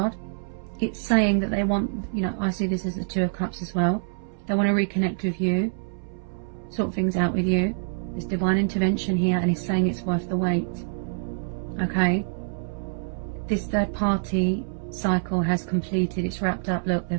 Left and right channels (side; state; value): left; silent; 61 dB below the other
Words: it's saying that they want, you know, I see this as the Two of Cups as well. They want to reconnect with you, sort things out with you. There's divine intervention here, and it's saying it's worth the wait. Okay. This third party cycle has completed. It's wrapped up. Look,